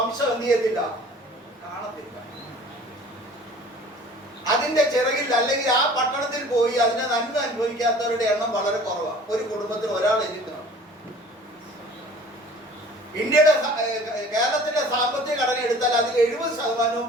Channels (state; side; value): normal; both; correlation 0.47